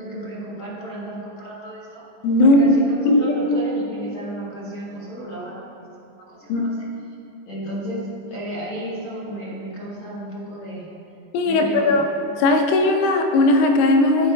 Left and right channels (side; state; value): right; late; 25 ms